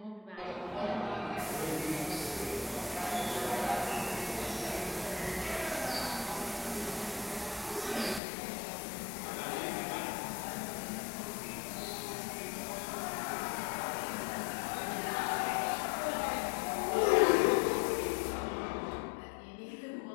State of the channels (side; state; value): right; drops out; at 8.2 s